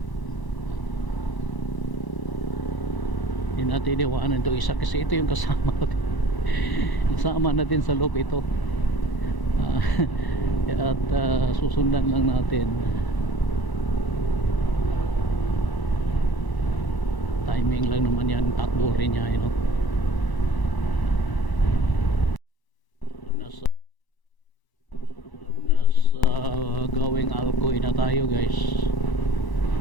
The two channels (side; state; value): right; late; 1.0 ms